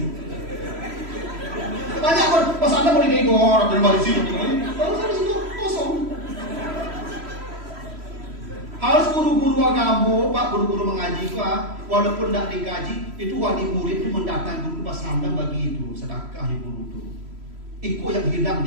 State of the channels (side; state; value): left; late; 3.0 ms